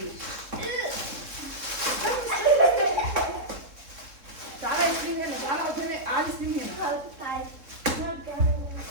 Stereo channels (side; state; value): left; late; 3.7 ms